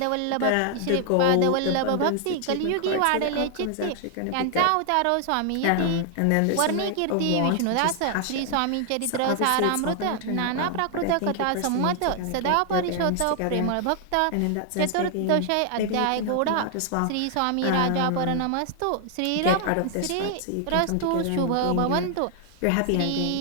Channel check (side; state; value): both; different; correlation 0.00